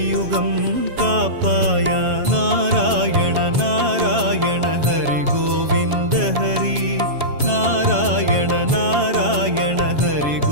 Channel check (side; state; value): left; late; 7.2 ms